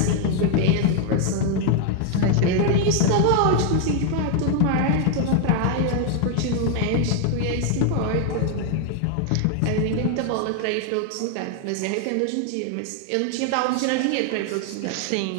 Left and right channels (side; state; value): both; different; correlation 0.00